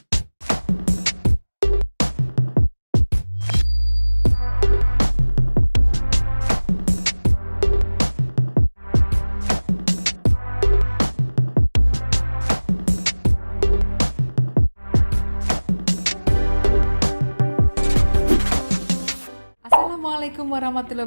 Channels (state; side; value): inverted; both; correlation -1.00